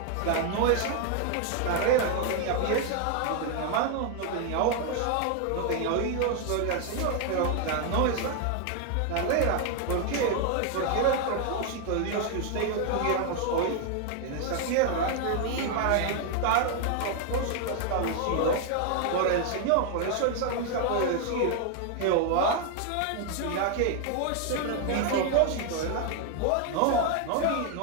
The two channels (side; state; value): both; different; correlation 0.00